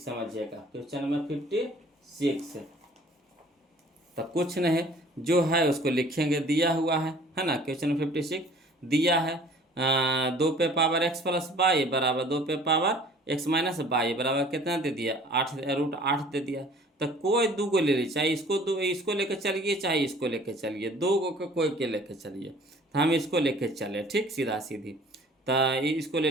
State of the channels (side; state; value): both; normal; correlation 0.51